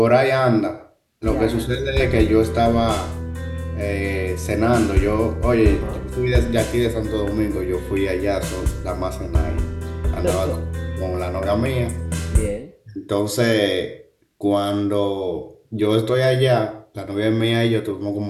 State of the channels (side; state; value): both; identical; correlation 1.00